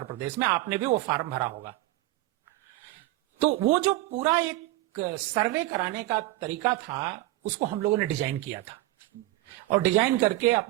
प्रदेश में। आपने भी वो फॉर्म भरा होगा। तो वो जो पूरा एक सर्वे कराने का तरीका था उसको हम लोगों ने डिजाइन किया था और डिजाइन करके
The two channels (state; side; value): quieter; left; 17.8 dB